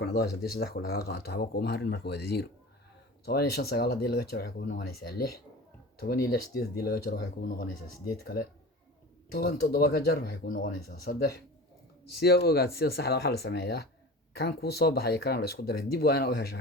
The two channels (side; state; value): both; normal; correlation 0.35